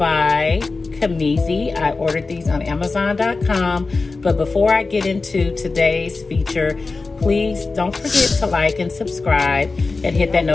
Kamizi. I ordered these on Amazon.com, but before I get into today's feature, please don't forget to like and subscribe and hit that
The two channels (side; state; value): right; quieter; 3.9 dB